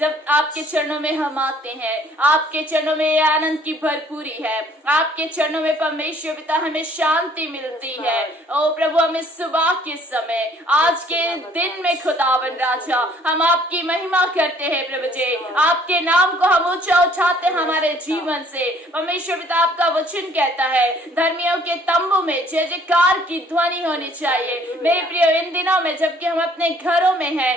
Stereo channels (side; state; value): both; normal; correlation 0.59